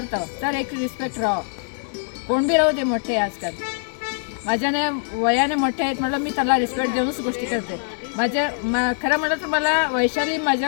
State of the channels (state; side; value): silent; right; 64 dB below the other